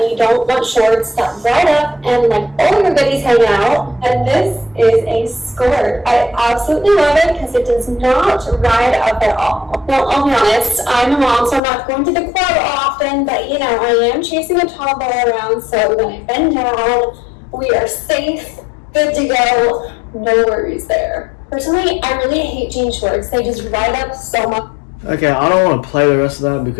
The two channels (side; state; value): right; drops out; at 11.6 s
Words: you don't want shorts that ride up and like all your goodies hang out, and this is a skirt. I absolutely love it because it does not ride up at all. Well, I'll be honest, I'm a mom, so I'm not going to the club often, but you know, I am chasing a toddler around, so when I bend down, we are safe, good to go, no worries there. Personally, I really hate jean shorts. They just ride up so much. Okay, I don't want to play the rest of that